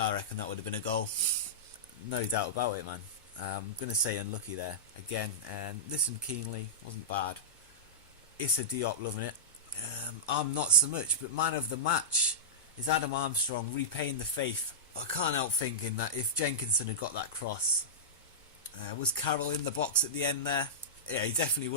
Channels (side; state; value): both; normal; correlation -0.13